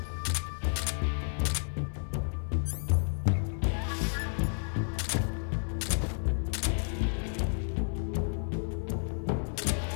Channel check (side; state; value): right; silent; digital silence